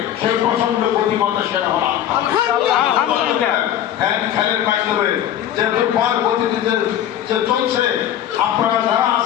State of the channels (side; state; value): right; quieter; 11.0 dB